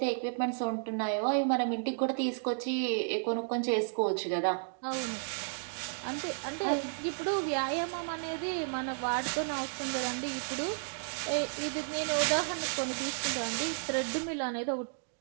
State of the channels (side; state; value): left; silent; digital silence